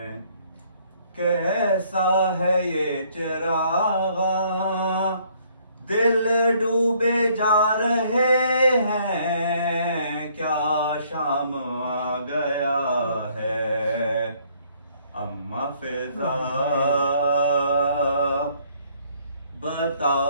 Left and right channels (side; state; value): both; inverted; correlation -0.64